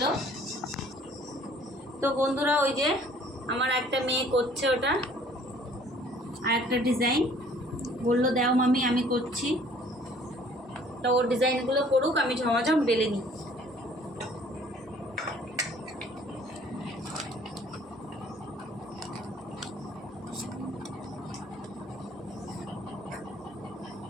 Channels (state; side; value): normal; both; correlation 0.56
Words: তো বন্ধুরা, ওই যে আমার একটা মেয়ে করছে ওটা, আর একটা ডিজাইন বললো দাও মামি, আমি করছি। তো ওর ডিজাইনগুলো করুক, আমি ঝমাঝম বেলে নিই।